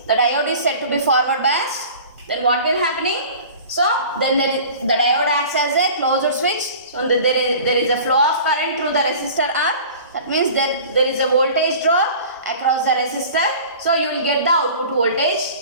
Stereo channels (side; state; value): both; inverted; correlation -0.42